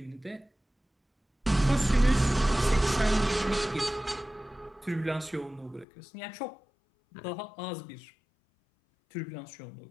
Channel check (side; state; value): right; drops out; at 5.9 s